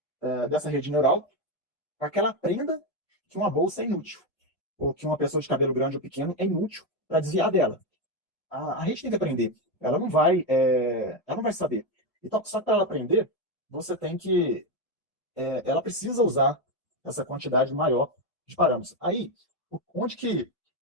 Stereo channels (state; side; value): normal; both; correlation 0.10